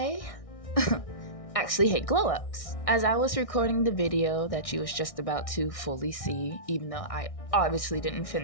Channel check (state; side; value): late; right; 1.6 ms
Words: actually hate glow-ups. As I was recording the video that you was just about to fully see, even though I obviously didn't